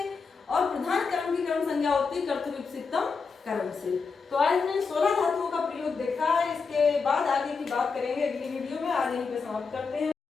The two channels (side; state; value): right; quieter; 5.0 dB